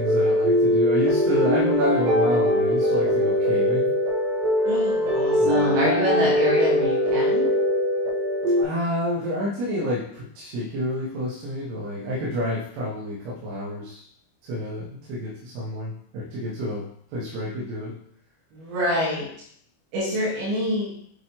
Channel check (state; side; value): late; left; 25 ms